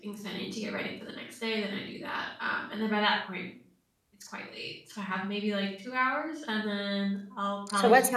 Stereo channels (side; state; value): both; identical; correlation 1.00